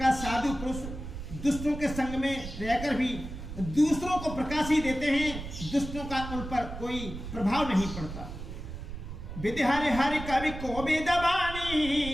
साधु पुरुष दुष्टों के संग में रहकर भी दूसरों को प्रकाश ही देते हैं, दुष्टों का उन पर कोई प्रभाव नहीं पड़ता। विधि हरि हरि कवि को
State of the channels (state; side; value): noise; right; rumble, 9 dB below the sound